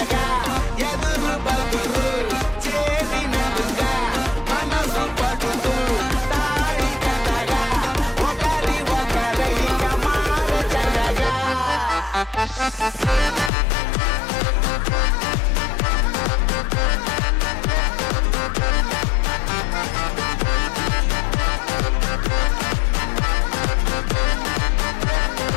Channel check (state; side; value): drops out; right; at 13.5 s